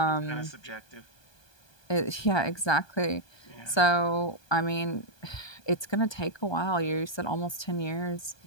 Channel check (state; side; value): late; right; 1.2 ms